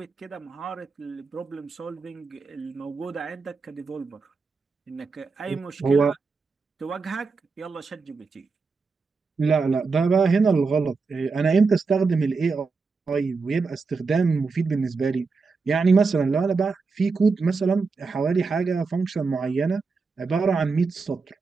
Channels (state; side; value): quieter; left; 4.5 dB